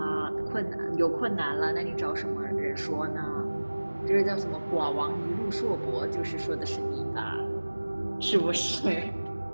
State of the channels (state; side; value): inverted; both; correlation -1.00